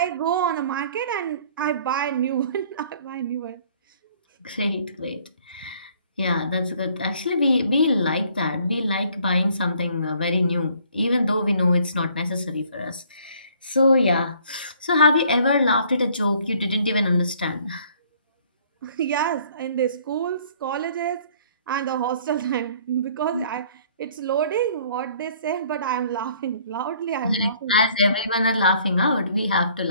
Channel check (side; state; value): both; inverted; correlation -0.59